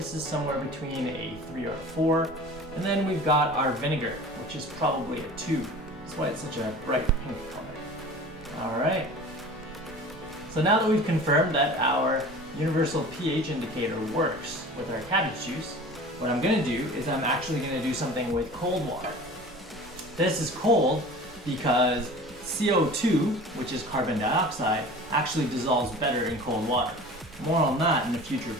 is somewhere between a 3 or 4. And then we've got our vinegar, which is probably a 2. That's why it's such a bright pink color. All right. So now that we've confirmed that our universal pH indicator works with our cabbage juice, what I'm gonna do is I'm actually gonna do something with cold water. This is cold because CO2, which is carbon dioxide, actually dissolves better in cold water. More on that in a future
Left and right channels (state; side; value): normal; both; correlation 0.40